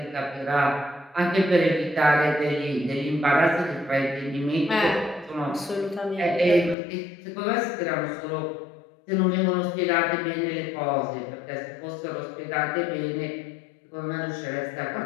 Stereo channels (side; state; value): right; drops out; at 6.8 s